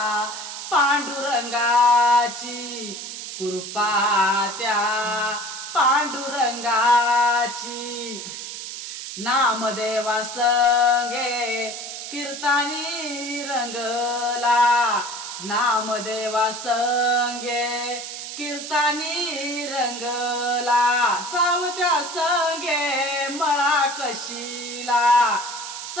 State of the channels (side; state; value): right; noise; hiss, 8 dB below the sound